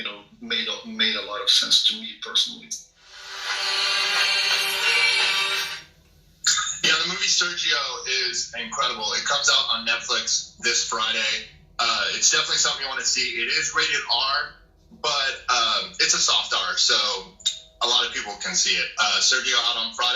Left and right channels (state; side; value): identical; both; correlation 1.00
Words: made a lot of sense to me personally. Yeah, the movie Sergio is incredible. It comes out on Netflix this Friday. It's definitely something you want to see. It is rated R, but it's a soft R, so a lot of people can see it. Sergio out on